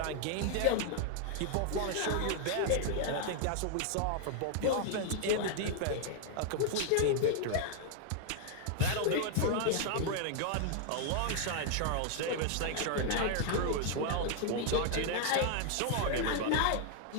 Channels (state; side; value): different; both; correlation 0.00